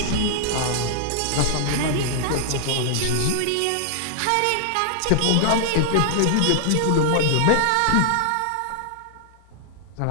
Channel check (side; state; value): both; different; correlation -0.01